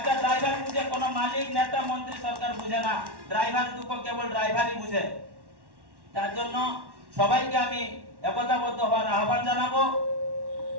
ড্রাইভার বুঝে, কোনো মালিক, নেতা, মন্ত্রী, সরকার বুঝে না। ড্রাইভারের দুঃখ কেবল ড্রাইভারই বুঝে। তার জন্য সবাইকে আমি একতাবদ্ধ হওয়ার আহ্বান জানাবো।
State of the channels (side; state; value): left; late; 1.1 ms